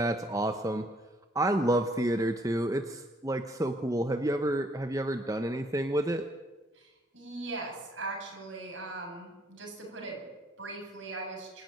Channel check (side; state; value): both; normal; correlation 0.66